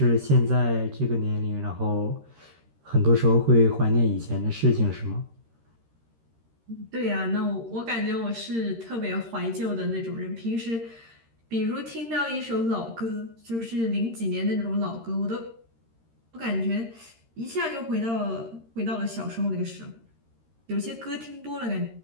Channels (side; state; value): left; late; 13 ms